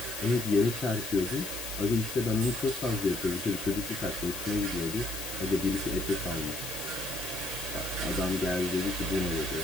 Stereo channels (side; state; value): left; noise; hiss, 7 dB below the sound